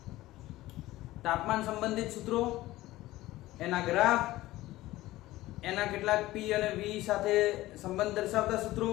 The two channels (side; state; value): right; quieter; 17.0 dB